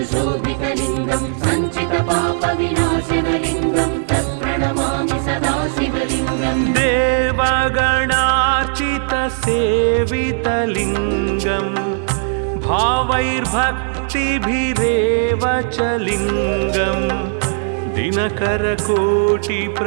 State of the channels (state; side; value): silent; left; 68 dB below the other